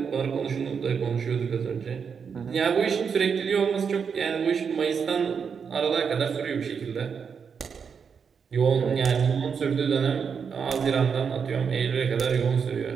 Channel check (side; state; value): left; quieter; 6.4 dB